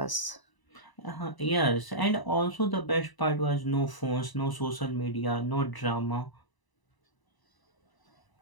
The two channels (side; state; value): right; late; 1.0 ms